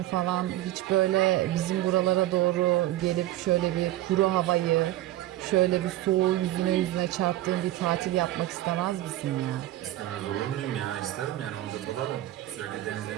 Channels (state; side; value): quieter; left; 15.1 dB